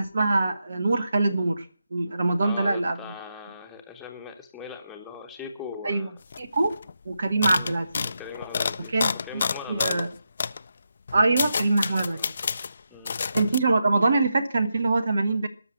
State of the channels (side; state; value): both; inverted; correlation -0.86